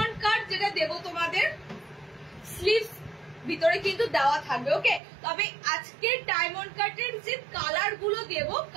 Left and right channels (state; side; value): drops out; left; at 5.0 s